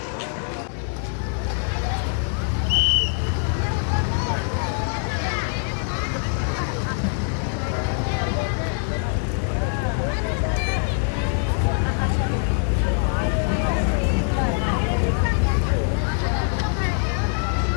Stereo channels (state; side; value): silent; right; 60 dB below the other